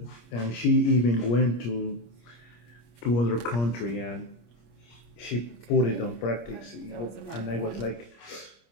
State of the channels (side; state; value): right; late; 25 ms